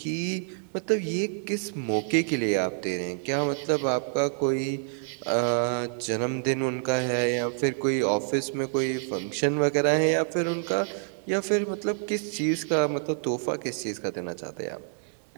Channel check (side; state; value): left; silent; digital silence